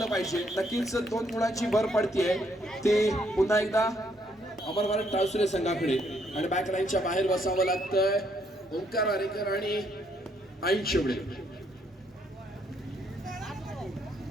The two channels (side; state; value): both; normal; correlation 0.71